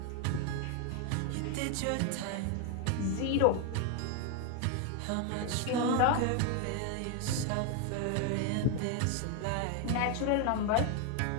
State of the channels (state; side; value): different; both; correlation 0.01